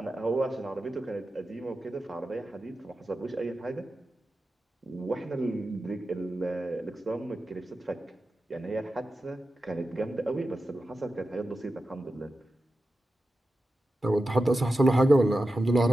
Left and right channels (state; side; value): normal; both; correlation 0.92